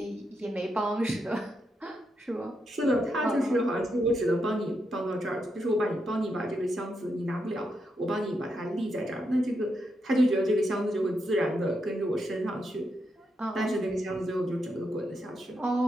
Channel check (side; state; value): both; normal; correlation 0.83